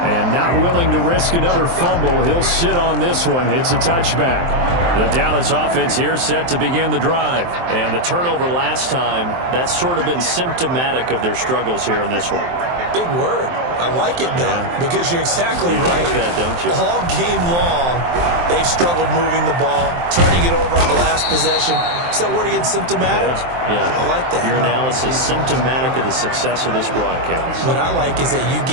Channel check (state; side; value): late; left; 23 ms